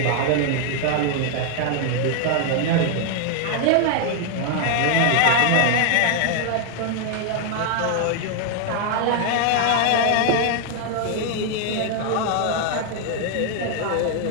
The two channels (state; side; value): different; both; correlation 0.00